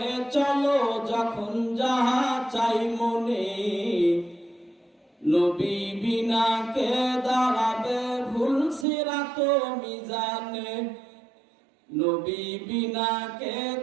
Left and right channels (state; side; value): drops out; left; at 8.8 s